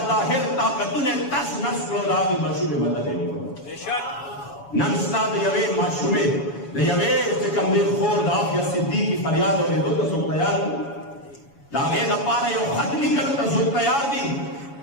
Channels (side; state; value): right; late; 7.1 ms